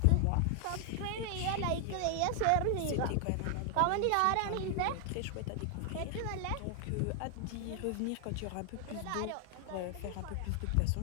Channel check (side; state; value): both; different; correlation 0.00